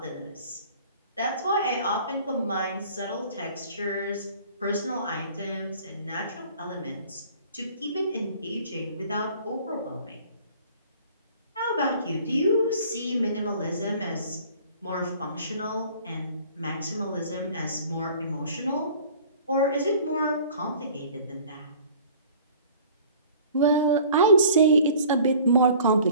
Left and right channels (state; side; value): inverted; both; correlation -0.49